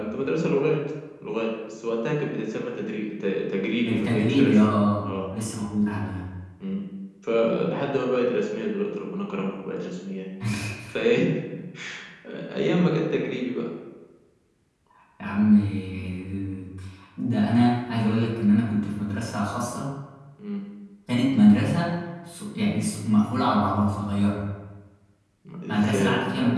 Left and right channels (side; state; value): both; identical; correlation 1.00